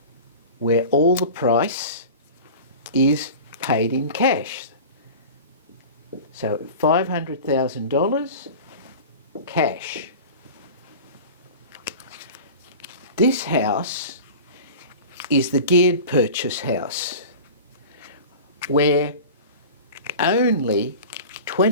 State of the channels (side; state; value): both; inverted; correlation -0.35